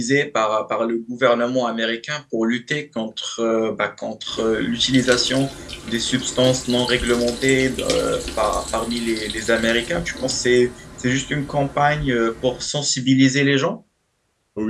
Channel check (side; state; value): both; identical; correlation 1.00